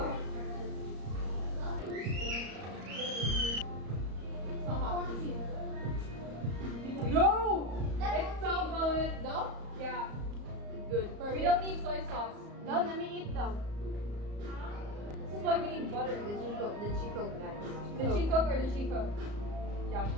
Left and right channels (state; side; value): late; left; 34 ms